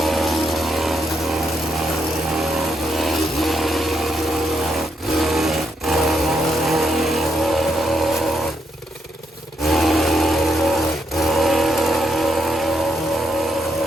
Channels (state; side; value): normal; both; correlation 0.79